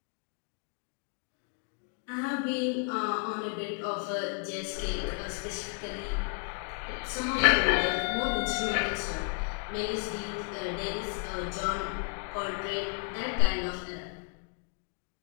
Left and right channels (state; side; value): quieter; right; 38.2 dB